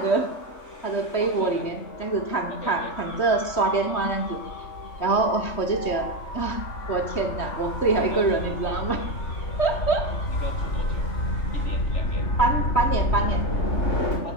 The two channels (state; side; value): late; right; 3.1 ms